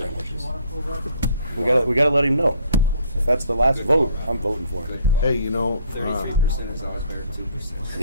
We gotta let him know. If that's the last vote, I'm voting for it. Hey, you know, 33% is always better than 2%.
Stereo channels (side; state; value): both; inverted; correlation -0.60